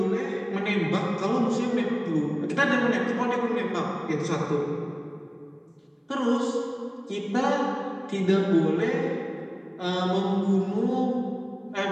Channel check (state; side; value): identical; both; correlation 1.00